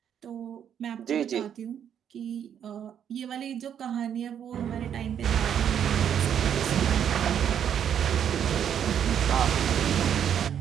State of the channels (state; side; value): quieter; left; 8.9 dB